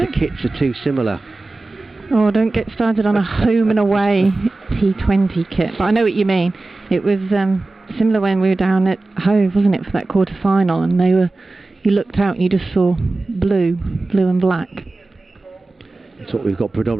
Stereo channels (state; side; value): quieter; left; 3.2 dB